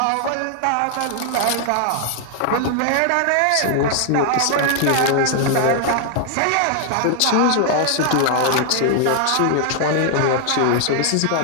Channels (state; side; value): different; both; correlation 0.00